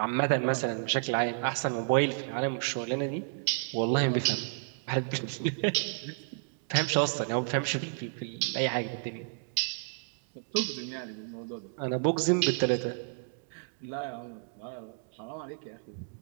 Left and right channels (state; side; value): silent; left; digital silence